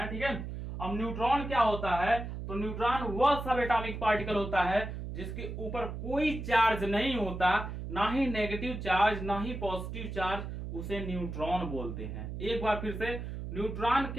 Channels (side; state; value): right; noise; hum, 7 dB below the sound